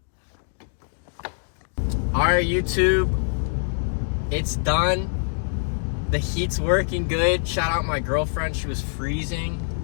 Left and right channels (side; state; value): right; silent; digital silence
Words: All right, YouTube, it's done. The heat's working good. Shout out my girlfriend, she was freezing.